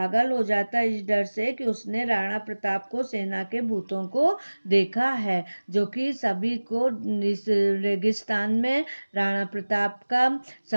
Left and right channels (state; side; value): inverted; both; correlation -1.00